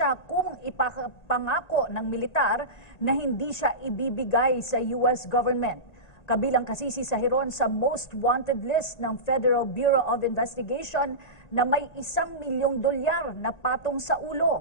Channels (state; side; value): late; right; 1.9 ms